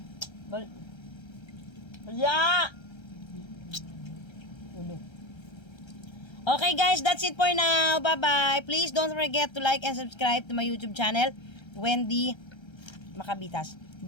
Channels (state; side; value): late; right; 1.3 ms